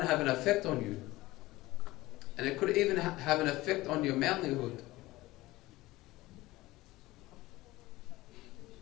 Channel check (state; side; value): quieter; right; 18.8 dB